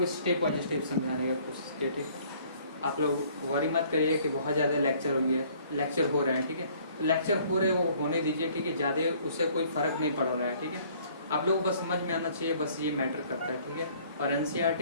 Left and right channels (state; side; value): inverted; both; correlation -0.58